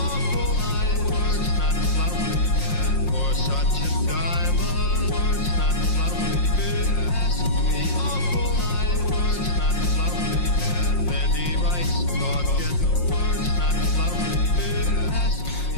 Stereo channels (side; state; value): right; late; 5.6 ms